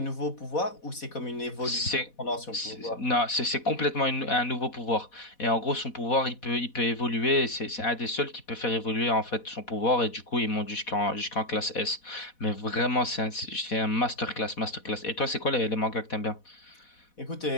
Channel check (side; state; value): right; late; 4.1 ms